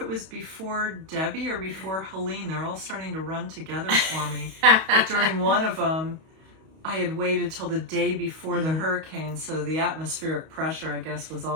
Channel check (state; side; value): late; left; 31 ms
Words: was before Debbie or before Helene. They're all starting to run together for me. But during one of them, I had waited till the day before the hurricane, so the atmospheric pressure, I guess, was